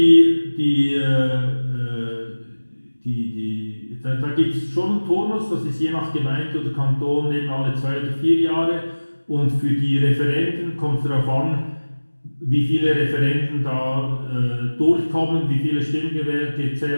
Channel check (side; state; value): both; inverted; correlation -1.00